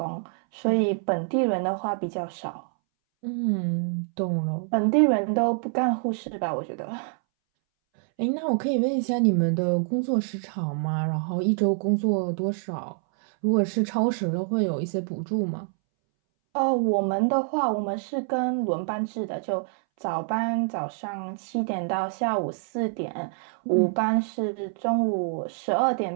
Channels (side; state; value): left; silent; 61 dB below the other